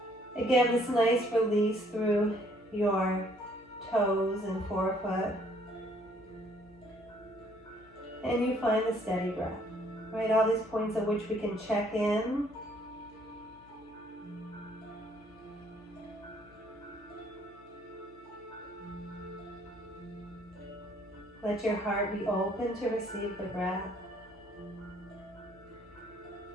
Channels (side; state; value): left; noise; hum, 25 dB below the sound